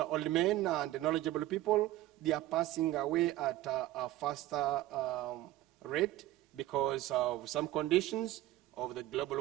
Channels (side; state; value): left; quieter; 15.4 dB